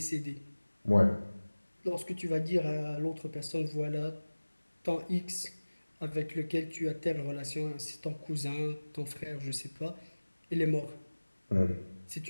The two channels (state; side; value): inverted; both; correlation -1.00